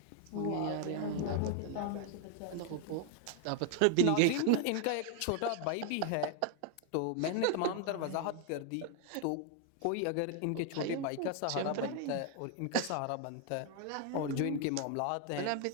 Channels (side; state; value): both; different; correlation 0.00